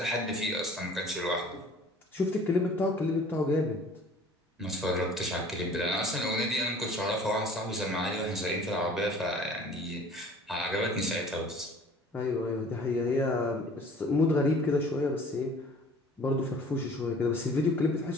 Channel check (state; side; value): normal; both; correlation 0.49